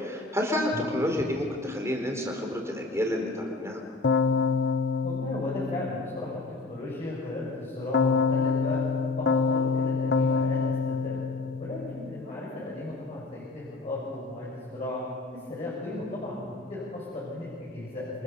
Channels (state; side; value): quieter; right; 3.2 dB